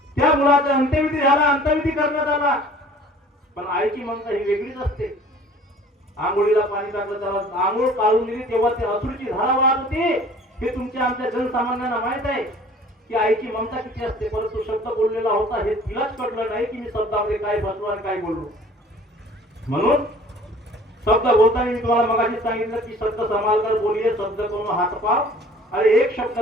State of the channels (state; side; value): normal; both; correlation 0.50